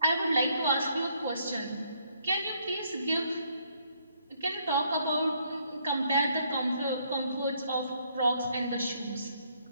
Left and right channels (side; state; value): both; inverted; correlation -0.69